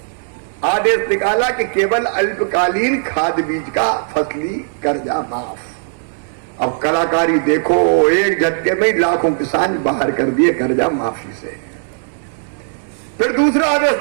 आदेश निकाला कि केवल अल्पकालीन खाद बीज का फसली कर्जा माफ। अब कलाकारी देखो, एक झटके में लाखों किसान बाहर कर दिए कर्जा माफी से। फिर दूसरा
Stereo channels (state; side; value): silent; left; digital silence